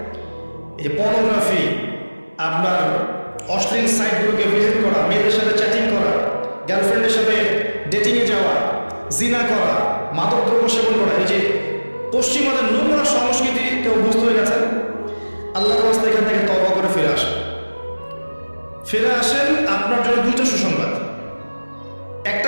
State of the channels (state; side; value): inverted; both; correlation -1.00